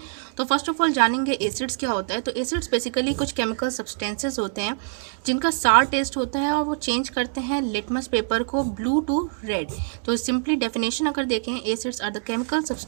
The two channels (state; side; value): silent; left; digital silence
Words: तो फर्स्ट ऑफ ऑल जानेंगे एसिड्स क्या होता है। तो एसिड्स बेसिकली कुछ केमिकल सब्सटेंसेस होते हैं जिनका सार टेस्ट होता है और वो चेंज करते हैं लिटमस पेपर को ब्लू टू रेड। तो सिंपली डेफिनेशन अगर देखें, acids are the chemical